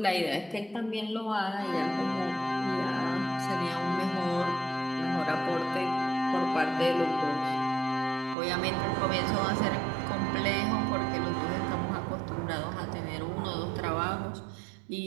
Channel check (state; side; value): drops out; left; at 8.3 s